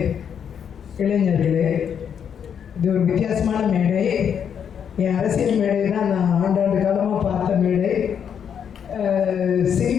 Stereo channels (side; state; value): right; quieter; 7.9 dB